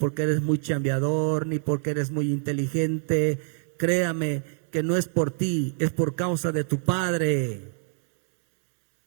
eres muy chambeador, ni porque eres muy inteligente. Créame que no es por ti, es por causa de tu Padre.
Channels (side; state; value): left; silent; digital silence